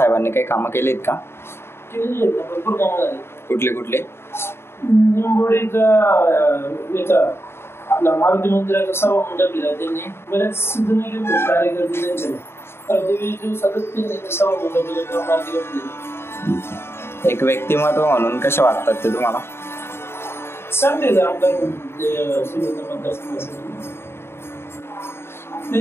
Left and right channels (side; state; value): right; late; 0.12 ms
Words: काही कामं केलीत का? भरपूर कामं झाली. कुठले कुठले? निंबोडीचा आपला मारुती मंदिराचा सभा मंडप दिला त्यांनी. बरेच सिद्धनागी कार्यकर्ते त्यांच्या सातत्याने सभा मंडप. एक व्यक्तिमत्व म्हणून कसे वाटतात ते तुम्हाला? चांगले आमदार मतदारसंघासाठी